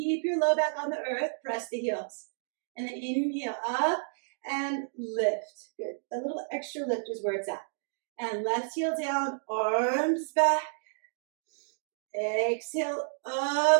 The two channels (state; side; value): silent; left; digital silence